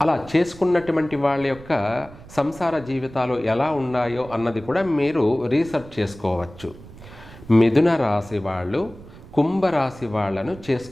అలా చేసుకున్నటువంటి వాళ్ళ యొక్క సంసార జీవితాలు ఎలా ఉన్నాయో అన్నది కూడా మీరు రీసెర్చ్ చేసుకోవచ్చు. మిథున రాశి వాళ్ళు కుంభరాశి వాళ్ళను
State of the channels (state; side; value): noise; right; rumble, 19 dB below the sound